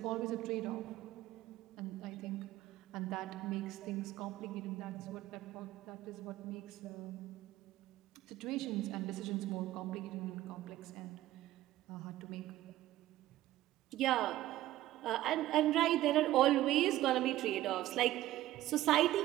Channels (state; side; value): quieter; left; 15.0 dB